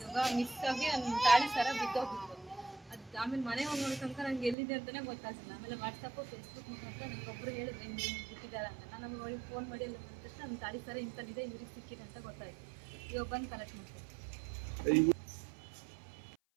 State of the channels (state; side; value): drops out; left; at 4.5 s